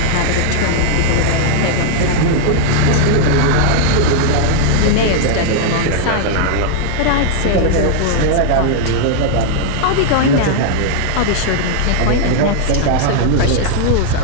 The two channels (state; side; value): different; both; correlation -0.01